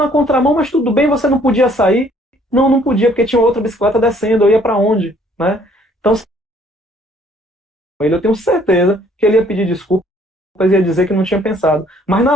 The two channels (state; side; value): normal; both; correlation 0.61